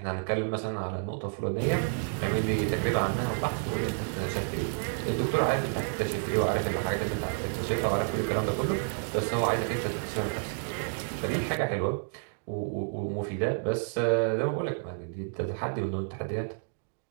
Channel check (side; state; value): left; silent; 58 dB below the other